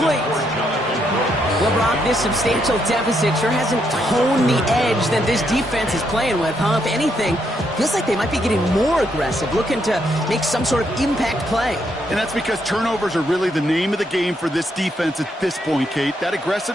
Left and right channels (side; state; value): both; normal; correlation 0.76